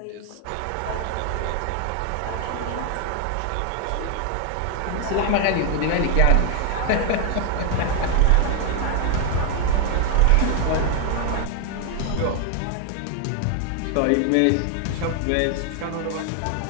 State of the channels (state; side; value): different; both; correlation 0.00